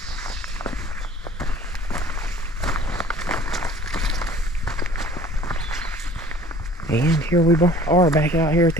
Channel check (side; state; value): both; normal; correlation 0.49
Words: And here we are back out here at